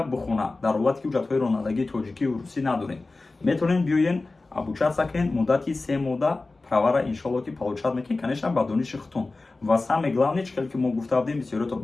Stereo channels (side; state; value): right; quieter; 3.4 dB